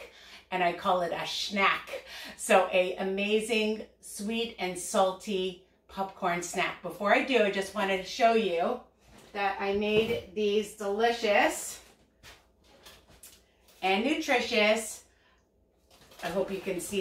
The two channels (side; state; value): both; identical; correlation 1.00